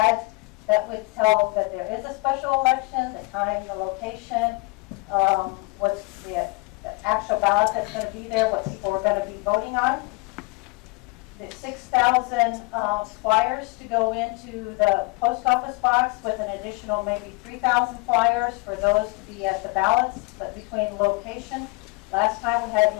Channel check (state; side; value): quieter; right; 25.4 dB